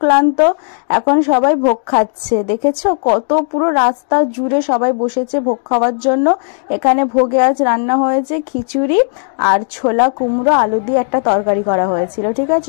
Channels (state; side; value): silent; right; 70 dB below the other